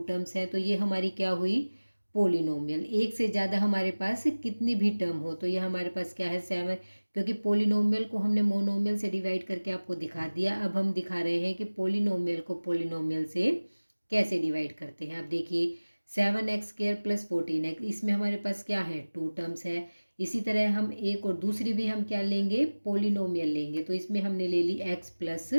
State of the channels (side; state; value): both; inverted; correlation -1.00